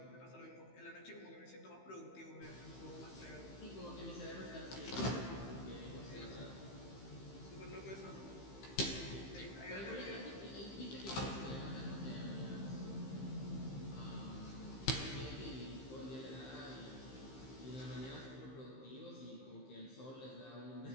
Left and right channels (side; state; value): right; late; 15 ms